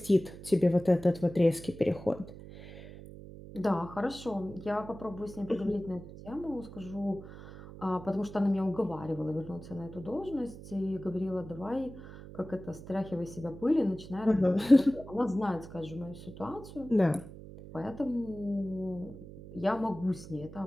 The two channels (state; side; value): noise; right; hum, 15 dB below the sound